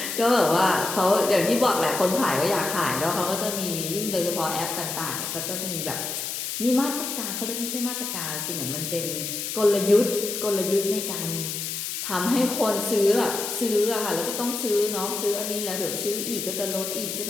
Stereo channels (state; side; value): noise; left; hiss, 4 dB below the sound